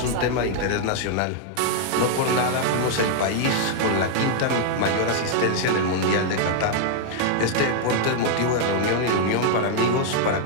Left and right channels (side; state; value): both; different; correlation 0.00